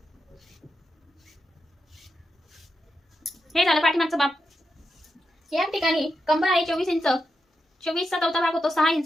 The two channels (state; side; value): normal; both; correlation 0.86